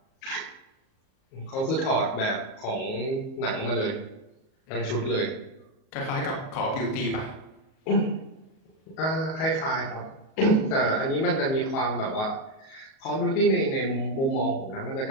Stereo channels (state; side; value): late; right; 37 ms